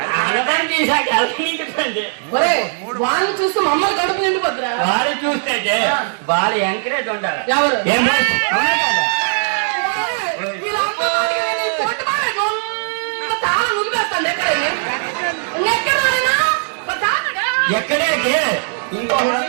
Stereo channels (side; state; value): left; silent; digital silence